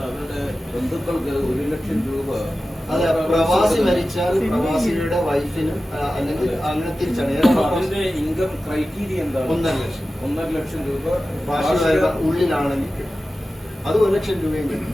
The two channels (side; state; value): both; normal; correlation 0.94